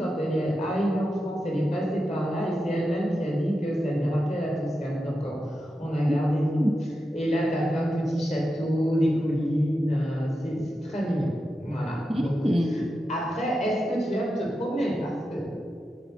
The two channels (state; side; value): normal; both; correlation 0.89